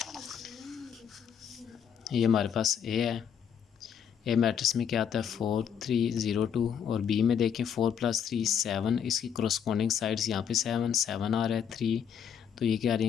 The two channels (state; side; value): quieter; right; 8.0 dB